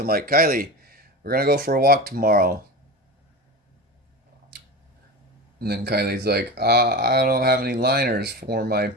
like, "Kylie, we're going to go for a walk tomorrow." And then Kylie's like, "I don't have any liners for my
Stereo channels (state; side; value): normal; both; correlation 0.27